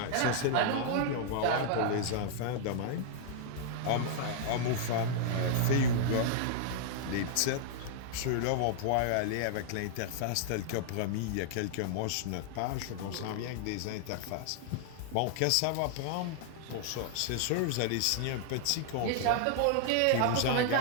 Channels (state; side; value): different; both; correlation -0.01